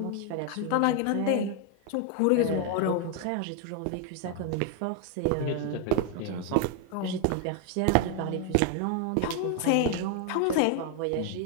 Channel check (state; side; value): different; both; correlation 0.00